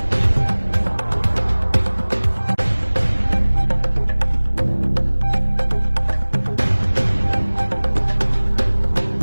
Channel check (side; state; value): both; inverted; correlation -1.00